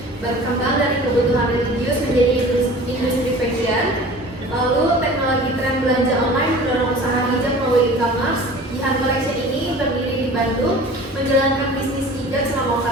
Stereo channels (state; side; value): normal; both; correlation 0.42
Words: berkembang dari kebutuhan religius menjadi industri fashion. Lalu teknologi tren belanja online mendorong usaha hijab melalui e-commerce. Jihan Collection ini berdiri di Bandung, menjalankan bisnis hijab selama